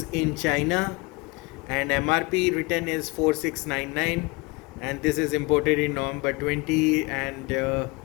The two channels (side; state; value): right; quieter; 26.2 dB